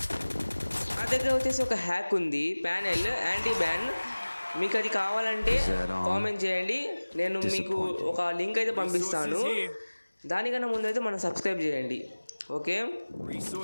నా దగ్గర వచ్చేసి ఒక హ్యాక్ ఉంది, ప్యానెల్ యాంటీ బ్యాన్. మీకు అది కావాలంటే కామెంట్ చేయండి. నేను మీకు ఒక లింక్ అయితే పంపిస్తాను. దానికన్నా ముందు అయితే మనం సబ్స్క్రైబ్ చేయండి. ఓకే,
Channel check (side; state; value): both; inverted; correlation -1.00